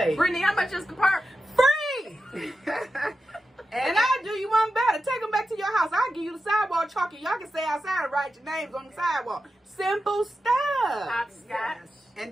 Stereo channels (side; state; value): both; normal; correlation 0.91